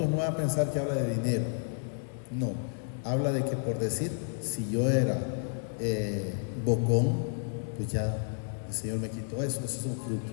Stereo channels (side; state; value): right; silent; 57 dB below the other